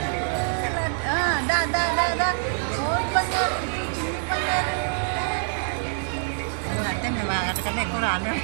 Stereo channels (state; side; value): silent; left; 58 dB below the other